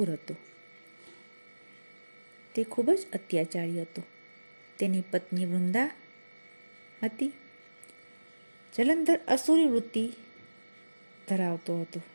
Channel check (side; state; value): both; inverted; correlation -1.00